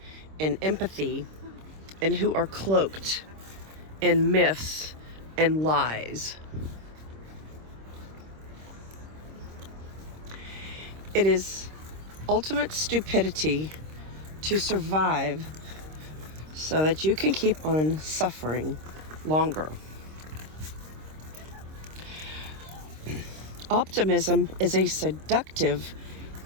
in empathy and who are cloaked in myths and lies. It is ultimate stupidity to survive so that you can keep on suffering longer. Optimism is a seductive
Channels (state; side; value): late; left; 26 ms